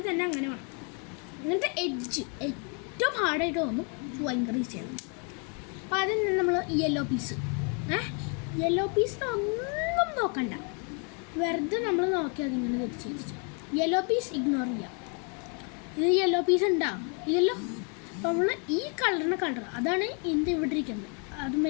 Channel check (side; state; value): right; quieter; 37.5 dB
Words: തന്നെ അങ്ങനെ വേണം. എന്നിട്ട് എഡ്ജ് ഏറ്റവും ഹാർഡായിട്ട് തോന്നും, ഭയങ്കര ഈസിയാണ്. അപ്പോൾ അതിന് നമ്മൾ യെല്ലോ പീസ് ഒന്നും നോക്കണ്ട, വെറുതെ നമ്മൾ നോക്കി അതിങ്ങനെ തിരിച്ച് യെല്ലോ പീസ് ഇഗ്നോർ ചെയ്യാം. ഇത് യെല്ലോ പീസ് ഉണ്ടാവും ഇല്ലല്ലോ. അപ്പോൾ നമ്മൾ ഈ കളർ അതാണ് ഇതിൻ്റെ ഇവിടെ ഇരിക്കുന്നത്.